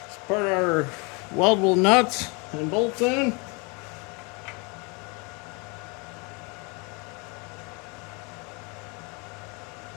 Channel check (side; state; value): right; quieter; 30.9 dB